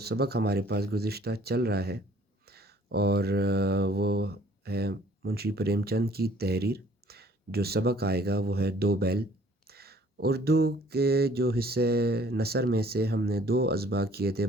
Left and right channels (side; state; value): both; normal; correlation 0.57